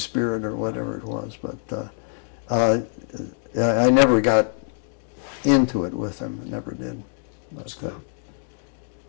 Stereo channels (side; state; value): right; silent; 61 dB below the other